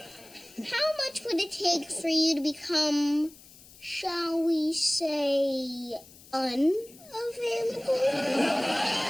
how much would it take for you to become, shall we say, unavailable?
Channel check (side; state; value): left; noise; hiss, 22 dB below the sound